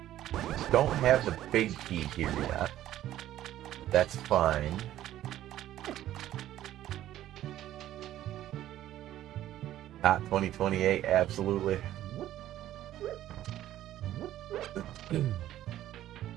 don't have the big key here yet. That's fine. Not 2028, absolutely. He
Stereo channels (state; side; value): quieter; left; 13.1 dB